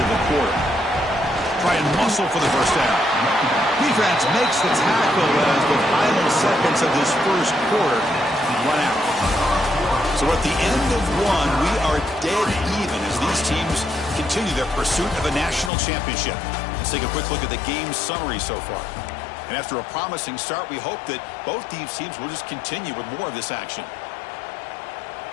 the quarter. Try and muscle for the first down. Defense makes the tackle as the final seconds of this first quarter run out. So at the end of 1, we are dead even as these teams continue their pursuit of a national championship. Let's take a quick look at the game summary so far. And after a promising start, we hope that both these teams will just continue with more of this action.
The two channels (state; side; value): drops out; right; at 15.7 s